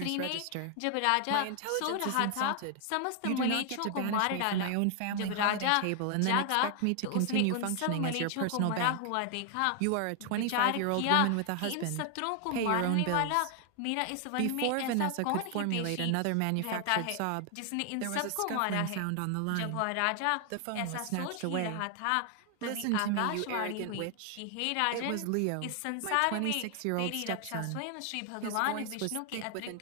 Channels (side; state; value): both; different; correlation 0.00